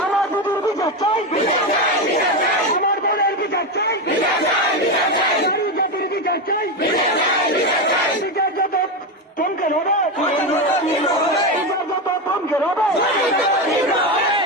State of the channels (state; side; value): normal; both; correlation 0.13